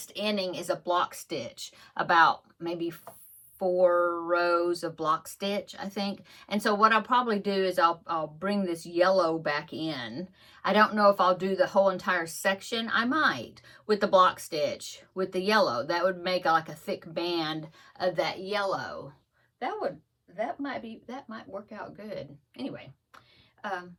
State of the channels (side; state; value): both; identical; correlation 1.00